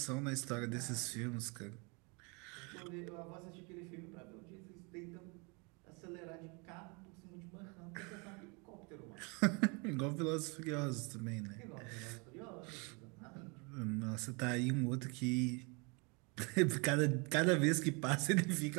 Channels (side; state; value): left; quieter; 31.1 dB